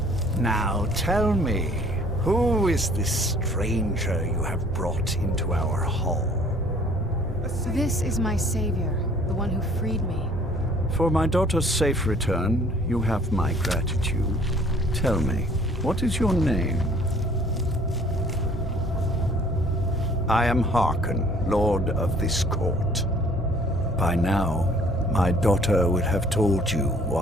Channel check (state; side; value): normal; both; correlation 0.56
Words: Now tell me, who is this stranger you have brought into our hall? This is my savior, the one who freed me. For my daughter's safe return, you have my gratitude. Tell me, what is your name? I am Harkon, Lord of this court. By now, my daughter would have told you